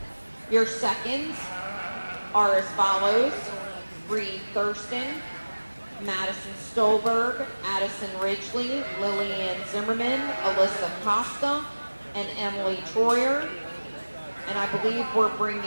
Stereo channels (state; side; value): inverted; both; correlation -1.00